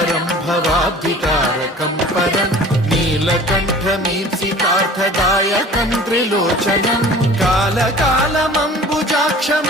भवाब्धितारकं परं नीलकण्ठमीप्सितार्थदायकं त्रिलोचनं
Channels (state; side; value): normal; both; correlation 0.44